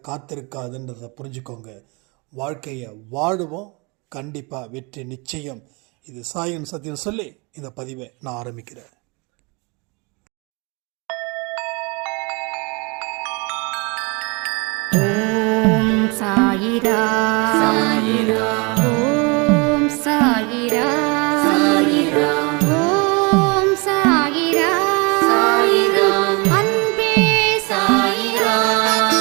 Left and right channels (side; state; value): left; quieter; 29.5 dB